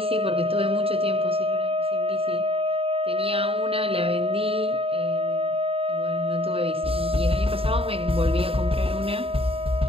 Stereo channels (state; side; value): late; left; 0.27 ms